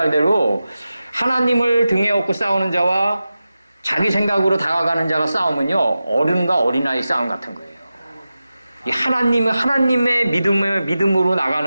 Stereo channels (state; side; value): inverted; both; correlation -0.94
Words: 하나님을 등에 업고 싸우는 자와 자기 생각으로 다가가는 자가 싸우면요 어른과 어린아이 싸움 같은 거예요. 이 하나님의 믿음으로